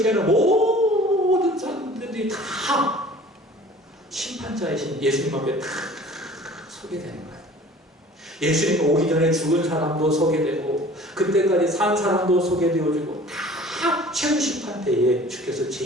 태어난 모든 사람들이 다 심판자이신 예수님 앞에 다 서게 되는 거예요. 예수님 오기 전에 죽은 사람도 서게 되고 그때까지 산 사람도 서게 되어지고 다 최후 심판 때에 주께서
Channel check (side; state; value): both; normal; correlation 0.47